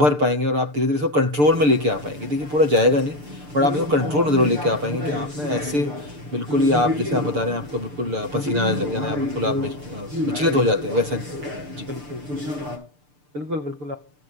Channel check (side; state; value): left; late; 6.8 ms